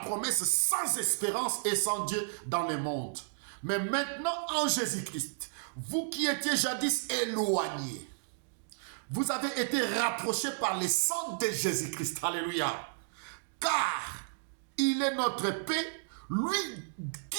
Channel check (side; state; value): left; silent; digital silence